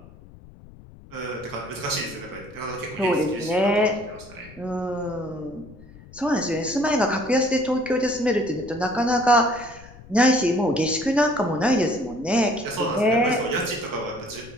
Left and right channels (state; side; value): noise; left; rumble, 20 dB below the sound